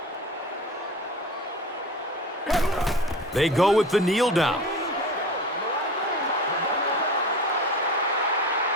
They go with the kneel down.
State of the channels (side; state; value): both; normal; correlation 0.34